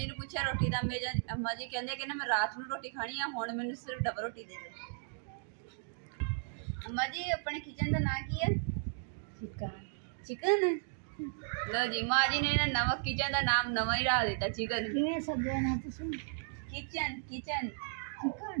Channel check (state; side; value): silent; left; digital silence